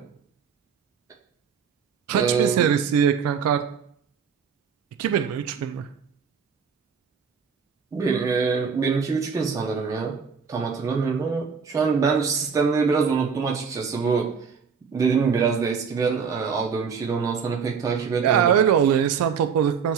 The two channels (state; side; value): quieter; left; 6.3 dB